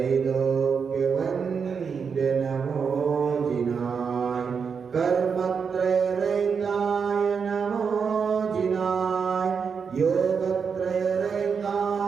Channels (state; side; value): quieter; left; 6.1 dB